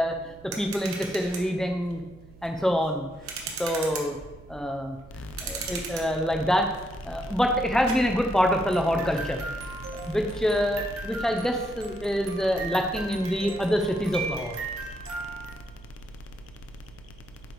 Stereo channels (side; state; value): right; noise; hum, 22 dB below the sound